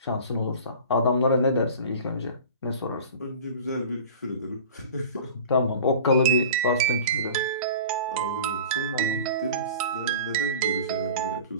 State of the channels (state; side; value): inverted; both; correlation -0.39